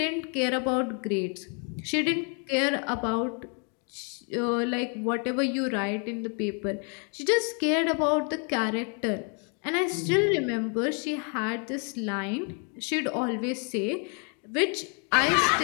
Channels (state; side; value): quieter; right; 38.5 dB